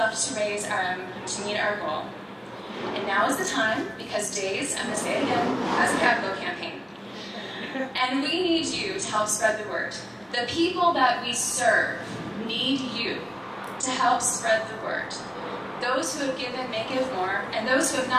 raise to meet our goal. And now is the time, because DAIS, I'm going to say it again, has a capital campaign. And we need you to help spread the word. The people that we serve need you to help spread the word. Those who have given may give more, and those who have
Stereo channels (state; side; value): identical; both; correlation 1.00